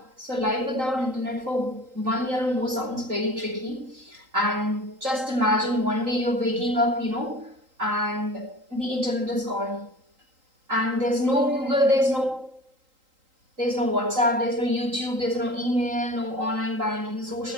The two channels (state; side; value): late; left; 3.8 ms